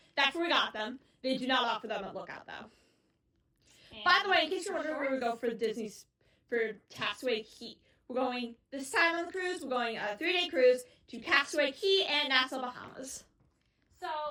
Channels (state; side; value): identical; both; correlation 1.00